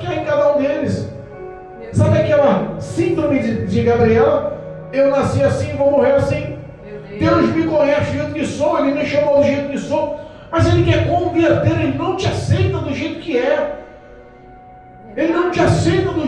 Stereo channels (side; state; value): both; identical; correlation 1.00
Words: há em cada um deles. Sabe aquela síndrome de Gabriela? Eu nasci assim, vou morrer assim. Deus me conhece do jeito que sou, Ele me chamou do jeito que sou, mas Ele quer converter, Ele não te aceita do jeito que é. Ele não te aceita